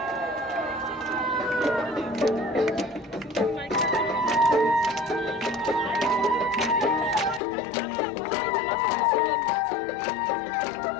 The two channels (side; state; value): right; drops out; at 7.4 s